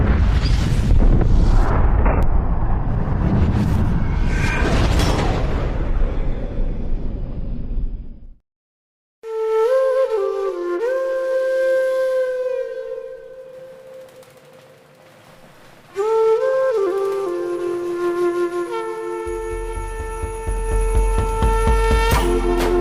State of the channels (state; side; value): identical; both; correlation 1.00